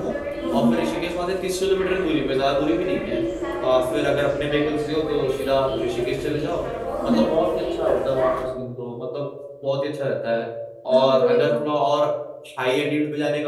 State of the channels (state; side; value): identical; both; correlation 1.00